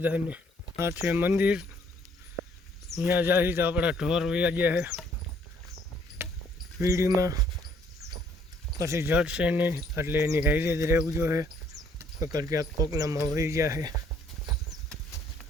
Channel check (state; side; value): normal; both; correlation 0.64